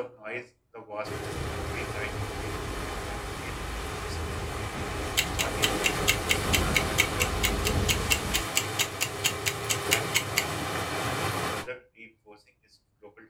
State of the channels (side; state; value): both; identical; correlation 1.00